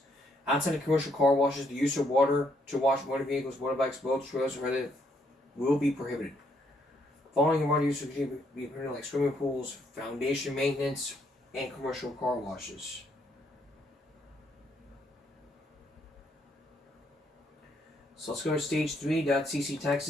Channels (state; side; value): normal; both; correlation 0.72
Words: Outside of commercial car washes, the use of water to wash motor vehicles, motorbikes, boats, trails, and other will be prohibited. Following water use would be permitted like swimming pools, foundation maintenance, and commercial car washes. So let's go to